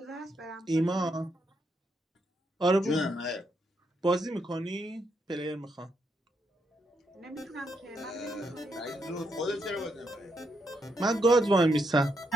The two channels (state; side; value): normal; both; correlation 0.79